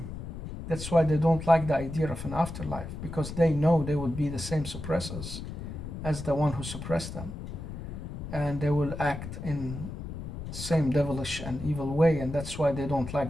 That's why they don't like the idea of an afterlife, because they know they would be the same suppressors as the one who suppressed them. And they will act in the same devilish and evil way, and that's why they don't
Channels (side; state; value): left; noise; rumble, 8 dB below the sound